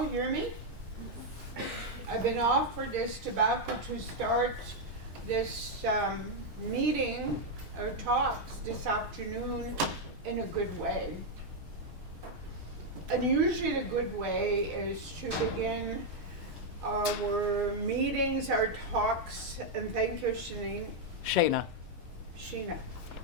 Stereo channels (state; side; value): late; left; 6.4 ms